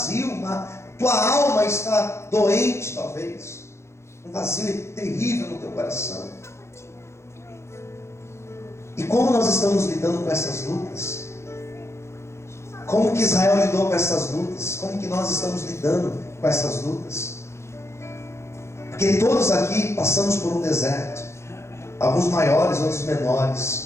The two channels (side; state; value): right; late; 0.13 ms